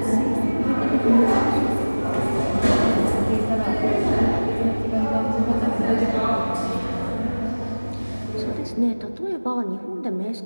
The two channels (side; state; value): both; inverted; correlation -1.00